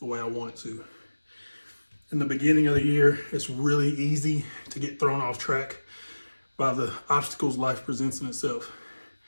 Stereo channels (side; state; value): both; inverted; correlation -1.00